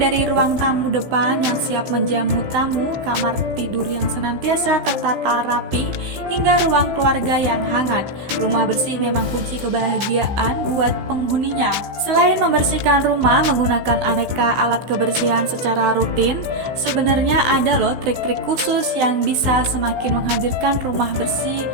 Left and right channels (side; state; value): left; late; 16 ms